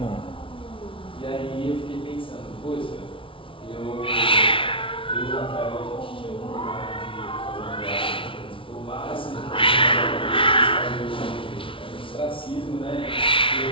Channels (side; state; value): right; late; 0.25 ms